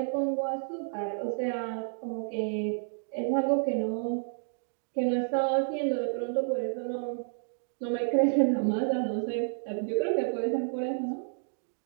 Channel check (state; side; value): silent; left; digital silence